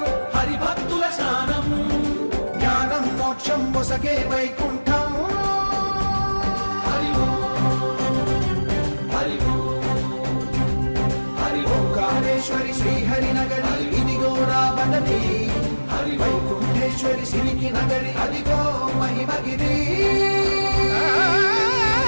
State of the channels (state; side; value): inverted; both; correlation -1.00